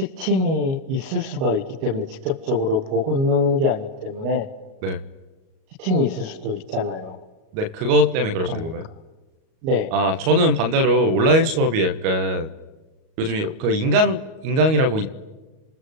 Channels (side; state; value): left; late; 38 ms